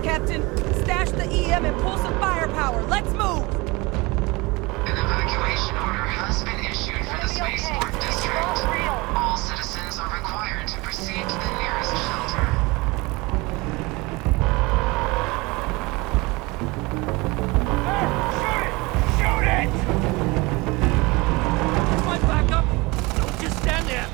Captain, stash the EM and pull some firepower. Let's move! An evacuation order has been issued for the spaceport district. All citizens are required to proceed to the nearest shelter. Shoot it! My backup! Don't just stand there!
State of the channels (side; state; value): left; quieter; 24.2 dB